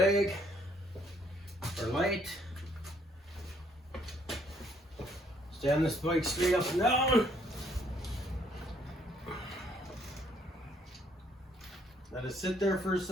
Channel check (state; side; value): normal; both; correlation 0.67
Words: or light. Stand this bike straight up and down. Let it sit there for a